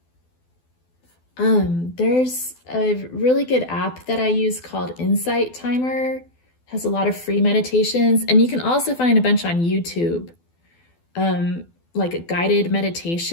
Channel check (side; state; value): right; late; 12 ms